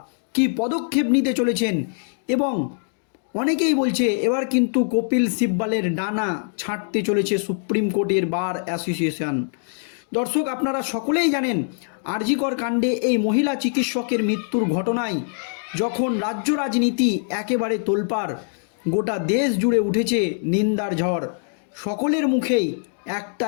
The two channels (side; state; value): right; silent; digital silence